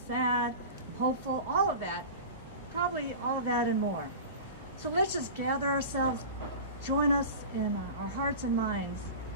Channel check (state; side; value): inverted; both; correlation -0.33